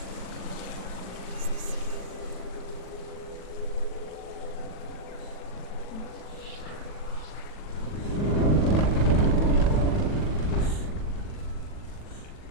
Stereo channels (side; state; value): right; late; 40 ms